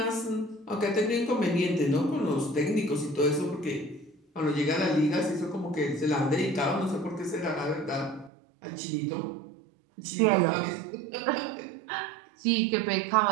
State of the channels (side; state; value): left; drops out; at 8.3 s